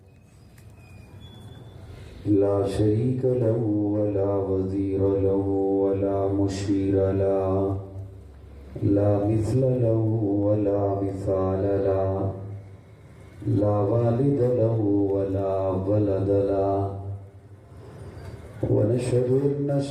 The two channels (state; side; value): identical; both; correlation 1.00